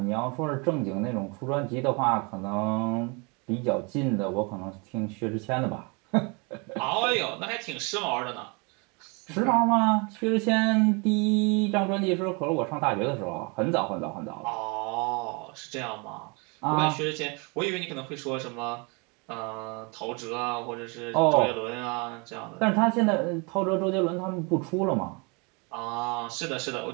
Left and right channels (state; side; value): quieter; left; 31.1 dB